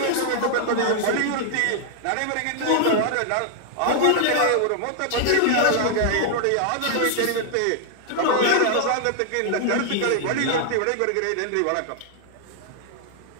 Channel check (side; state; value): both; different; correlation -0.01